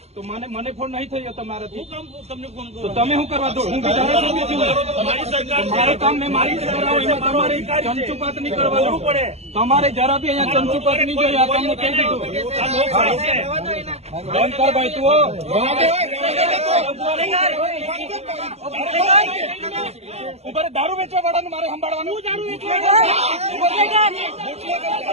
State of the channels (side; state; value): left; late; 0.31 ms